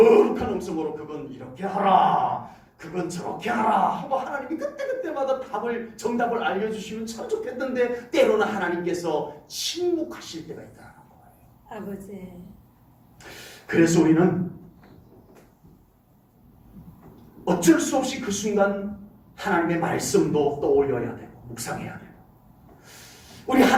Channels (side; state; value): both; identical; correlation 1.00